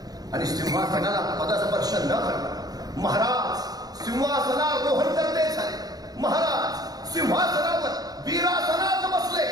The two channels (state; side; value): late; left; 0.18 ms